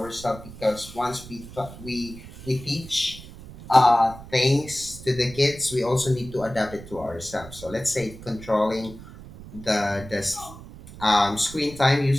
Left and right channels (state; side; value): noise; right; rumble, 16 dB below the sound